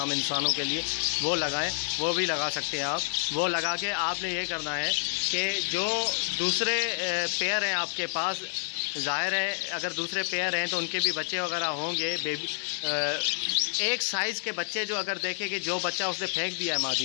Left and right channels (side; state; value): right; silent; digital silence